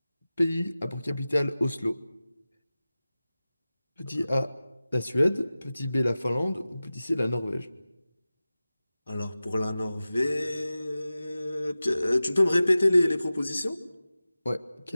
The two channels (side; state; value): both; inverted; correlation -0.96